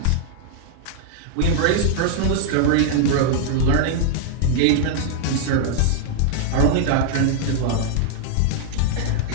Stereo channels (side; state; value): both; different; correlation -0.01